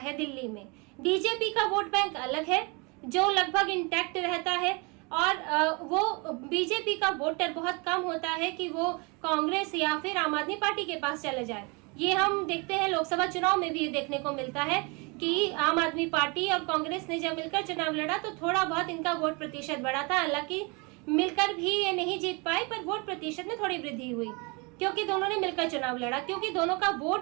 दिल्ली में। बीजेपी का वोट बैंक अलग है जो लगभग इंटैक्ट रहता है और वो बीजेपी का वोटर बहुत कम होता है कि वो कांग्रेस या फिर आम आदमी पार्टी के पास चले जाए। ये हम देखते हैं लोकसभा चुनाव में भी ये देखने को मिलता है कि आम आदमी पार्टी और कांग्रेस ने जब मिलकर चुनाव लड़ा तो थोड़ा बहुत इनका वोट प्रतिशत बढ़ा था। हालांकि मिलकर भी ये नहीं जीत पाए, पर वोट प्रतिशत में थोड़ी वृद्धि हुई क्योंकि दोनों ने मिलकर चुनाव लड़ा, क्योंकि दोनों का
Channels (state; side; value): quieter; left; 29.7 dB